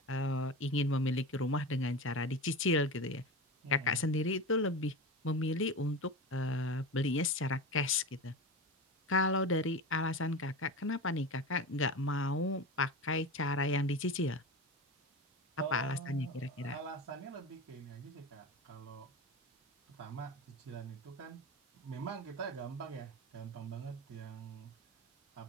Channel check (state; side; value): normal; both; correlation 0.26